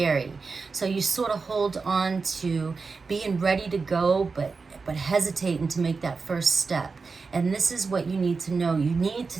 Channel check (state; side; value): quieter; left; 4.5 dB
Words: So you sort of hold on to being ready to go, but hesitating to make that first step. And this is what you need to know. You need